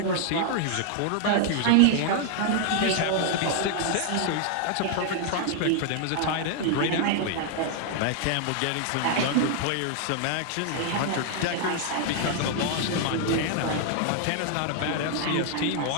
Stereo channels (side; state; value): both; different; correlation 0.00